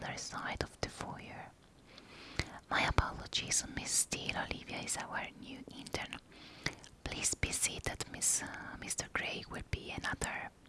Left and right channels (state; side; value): identical; both; correlation 1.00